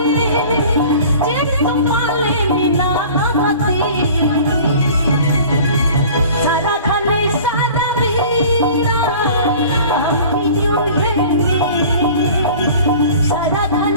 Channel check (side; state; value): both; inverted; correlation -0.45